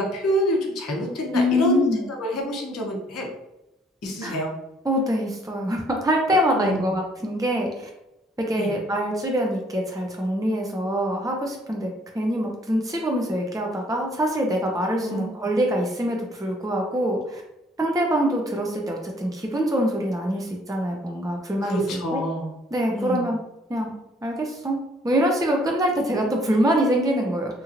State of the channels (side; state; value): both; normal; correlation 0.62